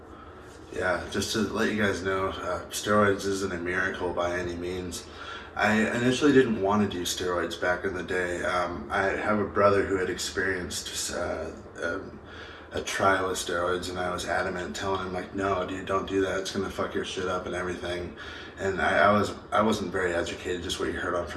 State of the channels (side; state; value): both; identical; correlation 1.00